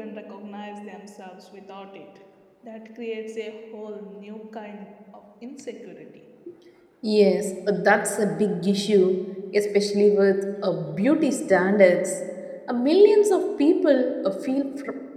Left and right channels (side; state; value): both; identical; correlation 1.00